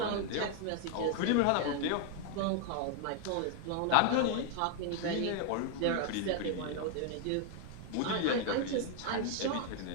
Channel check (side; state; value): both; different; correlation 0.00